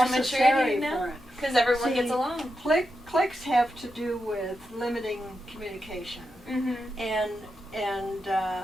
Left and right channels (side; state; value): both; normal; correlation 0.87